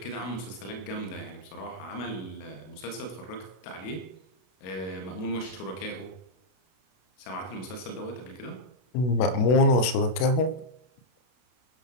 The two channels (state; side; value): late; right; 32 ms